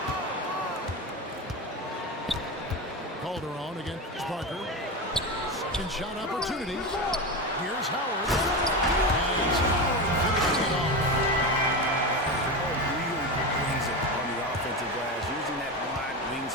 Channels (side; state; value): both; normal; correlation 0.20